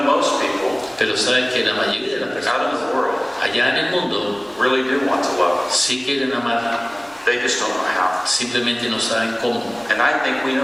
most people Pero sabes que la mayoría de las personas out in the world allá en el mundo really do want to love. sí quieren amar, They just don't know how. simplemente no saben cómo. And I think we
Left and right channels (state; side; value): noise; right; rumble, 29 dB below the sound